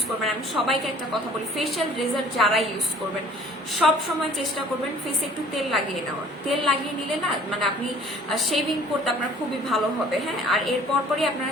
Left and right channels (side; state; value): both; normal; correlation 0.53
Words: করবেন, আমি সবাইকে একটা কথা বলি, ফেশিয়াল রেজার যারা ইউজ করবেন সব সময় চেষ্টা করবেন ফেসে একটু তেল লাগিয়ে নেওয়ার। তেল লাগিয়ে নিলে না মানে আপনি শেভিং করতে আপনার খুবই ভালো হবে, হ্যাঁ। আর এরপর পরই আপনারা